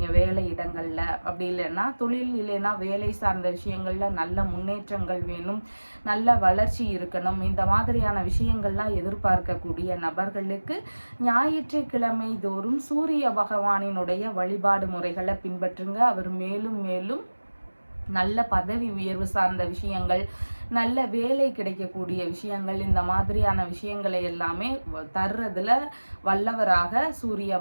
வேலை இடங்கள்ல, அப்படி இல்லைன்னா தொழில் இல்லைன்னா வேலை சார்ந்த விஷயங்கள்ல நல்ல முன்னேற்றங்கள் வேணும், நல்ல வளர்ச்சி இருக்கணும், இந்த மாதிரியான விஷயங்கள்லாம் எதிர்பார்க்கக்கூடிய நபர்களுக்கு ஞாயிற்றுக்கிழமை தோறும் சூரிய பகவானினுடைய வழிபாடு முறைகளை பின்பற்றுங்க. அவர் மேலும் மேலும் நல்ல பதவி உயர்வு சார்ந்த விஷயங்கள், நல்ல வேலை கிடைக்கக்கூடிய விஷயங்கள், இந்த மாதிரியான விஷயங்களை எல்லாமே தர்றதுல வல்லவராக சூரிய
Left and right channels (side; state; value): both; inverted; correlation -1.00